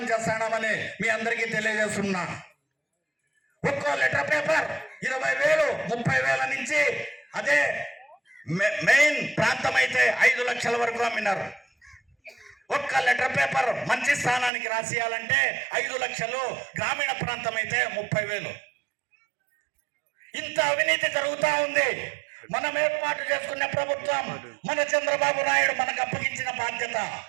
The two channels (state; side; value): drops out; left; at 14.5 s